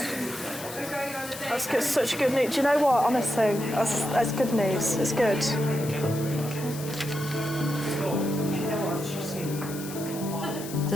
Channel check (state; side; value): noise; left; hiss, 12 dB below the sound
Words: That's good, such good news. Do you know what, honestly, that's good news. It's good.